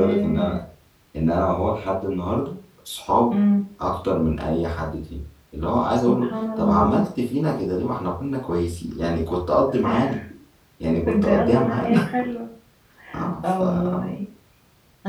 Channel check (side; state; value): both; identical; correlation 1.00